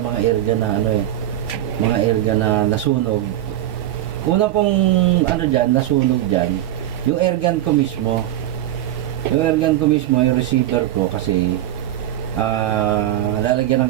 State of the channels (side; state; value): left; quieter; 13.0 dB